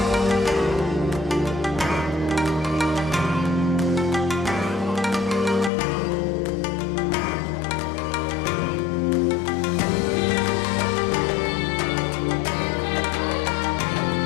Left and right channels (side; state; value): right; drops out; at 5.7 s